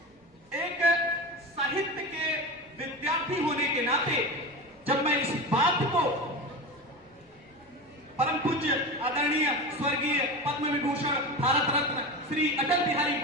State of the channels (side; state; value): both; normal; correlation 0.25